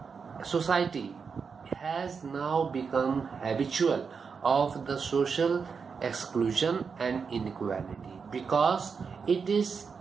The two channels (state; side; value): quieter; left; 5.7 dB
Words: society has now become habitual of the social exclusion and inequality because it is